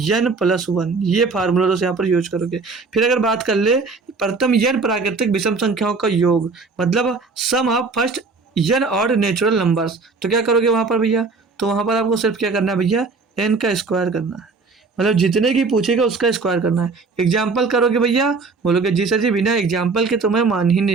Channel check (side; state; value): left; quieter; 4.2 dB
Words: प्लस 1, ये फार्मूला तो यहाँ पर यूज करोगे। फिर अगर बात कर ले प्रथम n प्राकृतिक विषम संख्याओं का योग, मतलब सम ऑफ फर्स्ट n और नेचुरल नंबर्स, तो क्या करोगे वहां पर भैया, तो वहाँ पर आपको सिर्फ क्या करना है भैया, n का स्क्वायर करना है, मतलब जितने की पूछेगा उसका स्क्वायर करना है। एग्जाम्पल करोगे भैया, बोलोगे जी सर जी बिना एग्जाम्पल के तो मैं मान ही